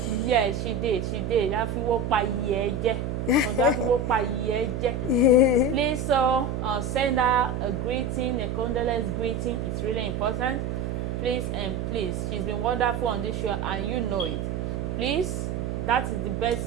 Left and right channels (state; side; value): noise; right; hum, 3 dB below the sound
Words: Yeah, she did. That people pa yeje. Please, send her a greeting, a condolence greeting. It's really important. Please and please. She's been wonderful on this show, and you know it. Please, that is the